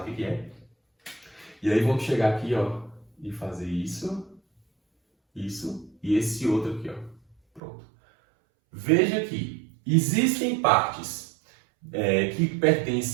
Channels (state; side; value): drops out; left; at 7.6 s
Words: o que é. E aí vamos chegar aqui, ó, e fazer isso, isso e esse outro aqui, ó. Pronto. Veja que existem partes que